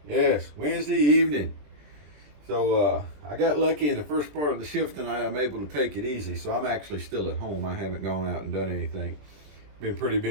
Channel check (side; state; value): left; late; 20 ms